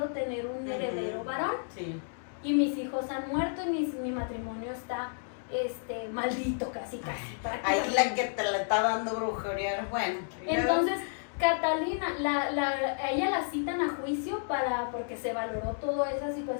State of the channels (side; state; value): right; silent; digital silence